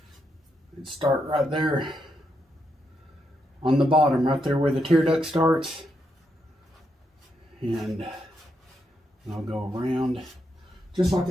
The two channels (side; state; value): both; normal; correlation 0.80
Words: and start right there on the bottom, right there where the tear duct starts. And I'll go around just like